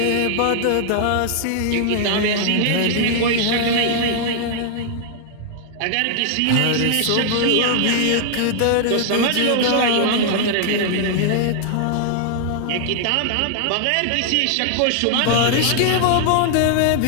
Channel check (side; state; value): both; different; correlation 0.00